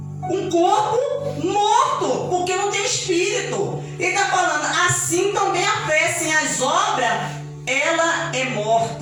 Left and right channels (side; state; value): both; identical; correlation 1.00